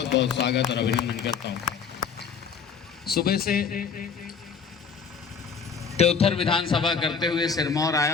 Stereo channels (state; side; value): quieter; right; 6.2 dB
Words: बहुत स्वागत और अभिनंदन करता हूं। सुबह से त्योथर विधानसभा करते हुए सिरमौर आया